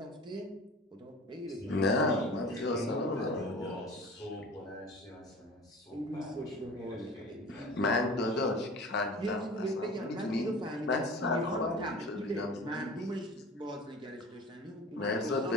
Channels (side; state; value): both; normal; correlation 0.39